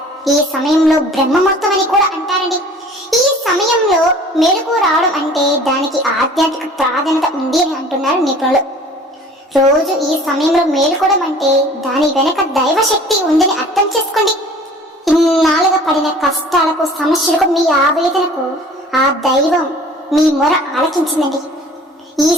ఈ సమయంలో బ్రహ్మముహూర్తం అని కూడా అంటారండి. ఈ సమయంలో మేలుకు రావడం అంటే దానికి ఆధ్యాత్మిక ప్రాధాన్యత ఉంది అని అంటున్నారు నిపుణులు. రోజు ఈ సమయంలో మేలుకోవడం అంటే దాని వెనక దైవశక్తి ఉందని అర్థం చేసుకోండి. ఇన్నాళ్ళుగా పడిన కష్టాలకు, సమస్యలకు, మీ ఆవేదనకు ఆ దైవం మీ మొర ఆలకించిందండి. ఈ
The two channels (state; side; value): normal; both; correlation 0.48